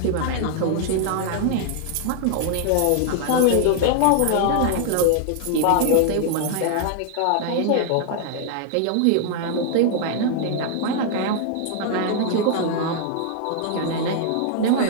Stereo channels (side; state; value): both; different; correlation 0.00